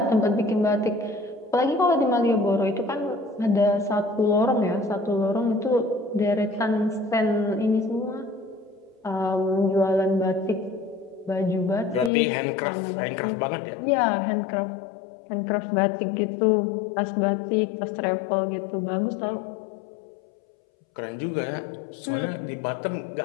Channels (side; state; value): right; drops out; at 12.1 s